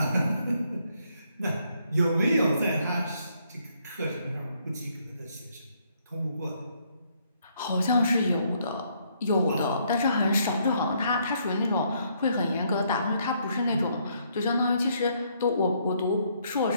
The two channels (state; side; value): inverted; both; correlation -0.71